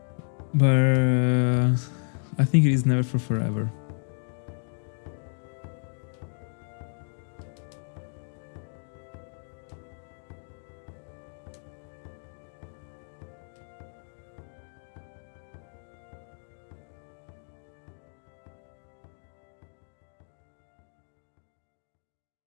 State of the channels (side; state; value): right; silent; digital silence